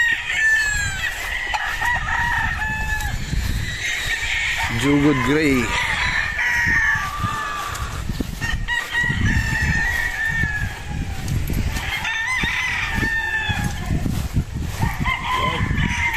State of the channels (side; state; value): both; identical; correlation 1.00